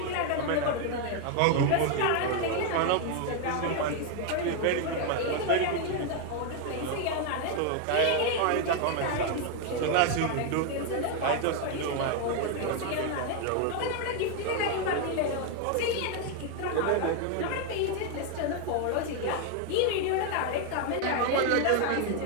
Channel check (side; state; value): both; different; correlation 0.01